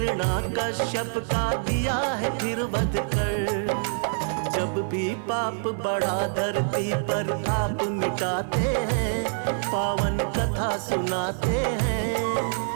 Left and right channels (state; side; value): silent; left; 56 dB below the other